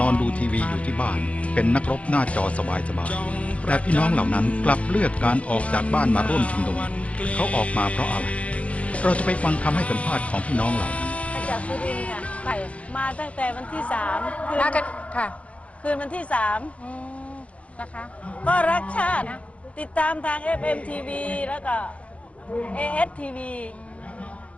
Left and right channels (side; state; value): right; late; 0.064 ms